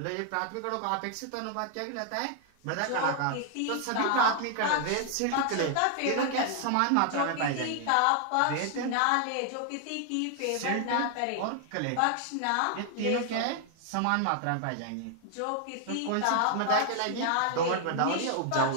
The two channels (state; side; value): different; both; correlation 0.00